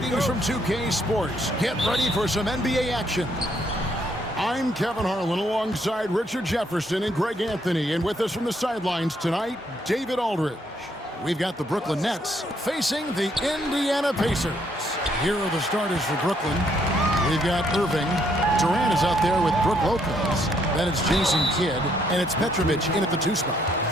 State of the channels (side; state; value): both; normal; correlation 0.71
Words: from 2K Sports. Get ready for some NBA action. I'm Kevin Harlan alongside Richard Jefferson and Greg Anthony. And with us from the sidelines tonight, David Aldridge. We've got the Brooklyn Nets facing the Indiana Pacers. Here are the starters for Brooklyn. We've got Irving. Durant is out there with Brook Lopez. Then it's Jason Kidd, and it's Petrović in at the 2 spot.